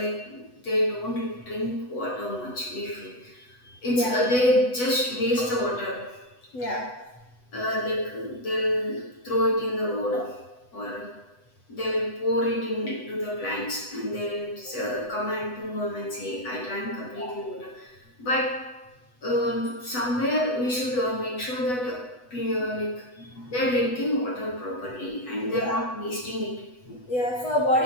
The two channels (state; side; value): late; right; 8.1 ms